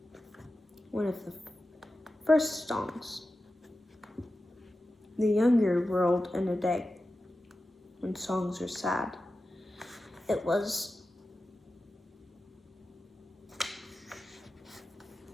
one of the first songs the younger world in a day, when songs are sad. It was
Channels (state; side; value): normal; both; correlation 0.93